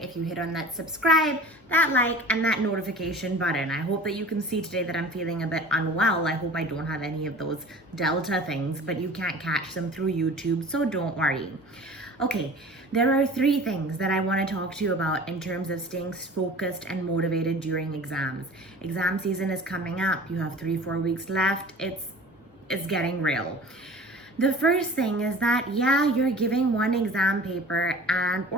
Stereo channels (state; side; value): normal; both; correlation 0.42